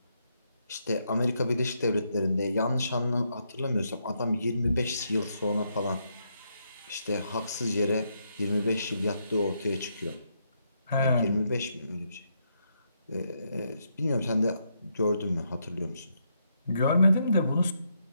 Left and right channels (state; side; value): inverted; both; correlation -0.78